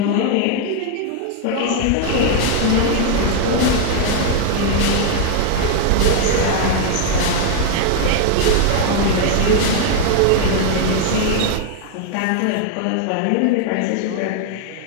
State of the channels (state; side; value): different; both; correlation 0.00